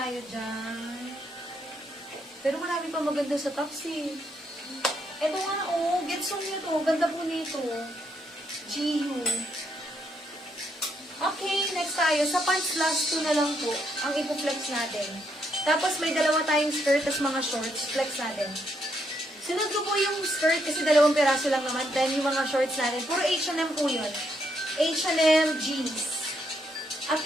dyan. Pero marami pa maganda sa top, sis. Ito nga, oh. Getsong nito. Ganda po nito. GU. Okay, next tayo. Sa pants last 2 na lang po ang ipo-flex natin. Tapos may dalawa tayong skirt, tas mga shorts. Flex natin. Sunod ko po yung skirt kasi 2 piraso lang naman. Then yung mga shorts natin. Puro H&M po yun. H&M jeans.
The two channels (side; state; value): both; normal; correlation 0.76